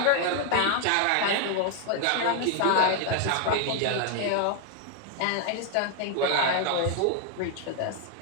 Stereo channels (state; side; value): different; both; correlation 0.00